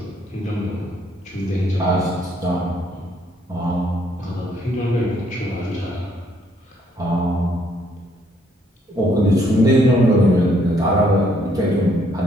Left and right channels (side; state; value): both; normal; correlation 0.68